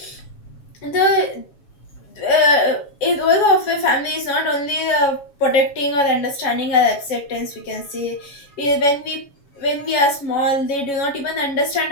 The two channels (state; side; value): late; right; 7.2 ms